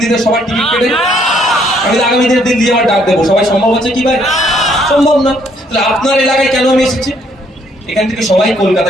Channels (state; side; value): normal; both; correlation 0.67